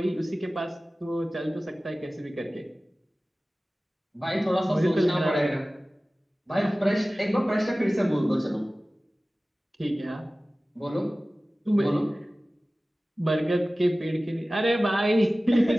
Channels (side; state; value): both; normal; correlation 0.97